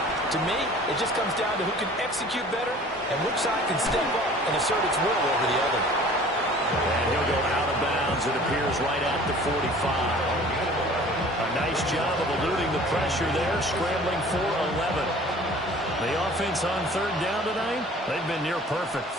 To me, it just comes down to who can execute better and which side can step up and assert its will over the other. And he'll go out of bounds, it appears, right at the 45. A nice job of eluding the pressure there, scrambling for 11. The offense on third down tonight, they've been near perfect,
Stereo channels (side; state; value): both; normal; correlation 0.47